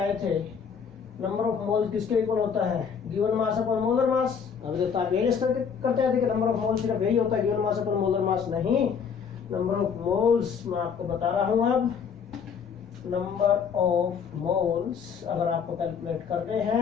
थे, नंबर ऑफ मोल्स किसके इक्वल होता है, गिवन मास अपॉन मोलर मास। अभी तक आप यही करते आए थे कि नंबर ऑफ मोल्स सिर्फ यही होता है, given mass upon molar mass नहीं। नंबर ऑफ मोल्स मैं आपको बता रहा हूं अब, नंबर ऑफ मोल्स अगर आपको कैलकुलेट करने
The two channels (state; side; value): quieter; right; 6.7 dB